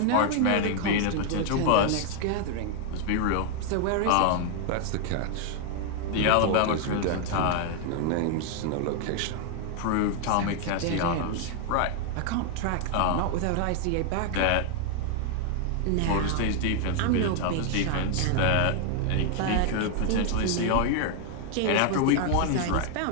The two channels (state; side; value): different; both; correlation 0.00